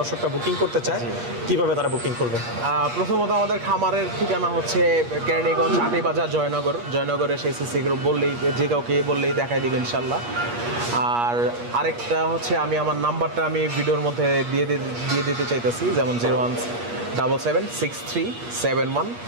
বুকিং করতে চায়, কিভাবে তারা বুকিং করবে? প্রথমত আমাদের খামারের ঠিকানা হচ্ছে কেরানীগঞ্জ আটিবাজার জয়নগরে সেই সিসি গ্রুপ বললেই, যে কাউকে বললেই দেখাই দেবে ইনশাল্লাহ। আর আরেকটা হচ্ছে আমি আমার নাম্বারটা আমি ভিডিওর মধ্যে দিয়ে দিতে চাইতেছি, যেমন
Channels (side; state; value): left; late; 8.4 ms